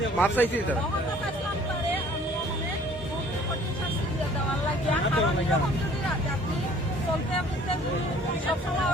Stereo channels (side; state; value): both; normal; correlation 0.54